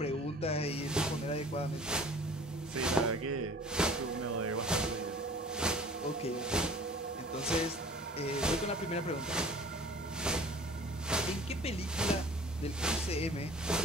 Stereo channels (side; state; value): both; normal; correlation 0.46